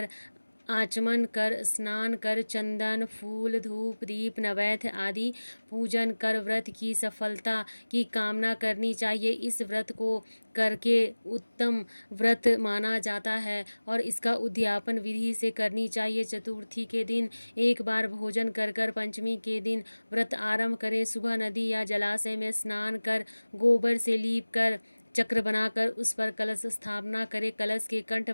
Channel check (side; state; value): both; inverted; correlation -1.00